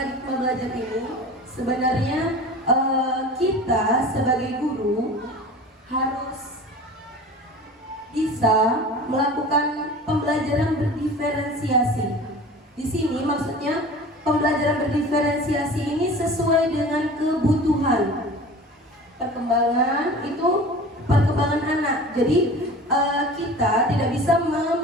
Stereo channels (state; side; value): normal; both; correlation 0.38